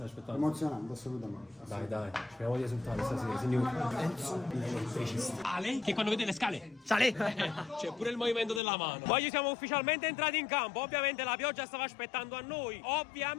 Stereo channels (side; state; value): right; drops out; at 8.6 s